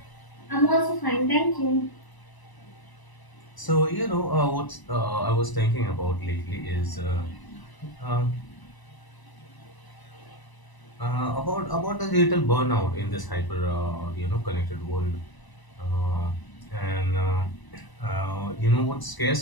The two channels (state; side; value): late; right; 1.0 ms